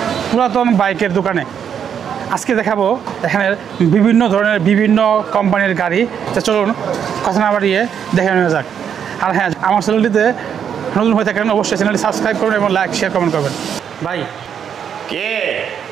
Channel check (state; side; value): quieter; left; 8.2 dB